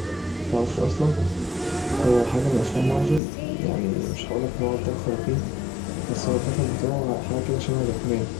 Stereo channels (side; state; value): right; drops out; at 3.2 s